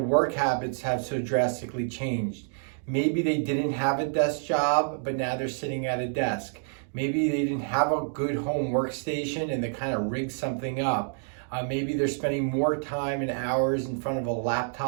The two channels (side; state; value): left; silent; digital silence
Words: habits have so drastically changed. Maybe they didn't have a desk job, but now they're sitting at a desk. Maybe they didn't have a good home workstation and they kind of rigged something up. Maybe they're spending more time and hours in front of a